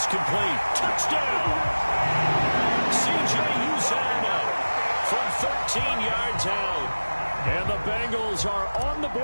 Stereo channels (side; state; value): both; inverted; correlation -1.00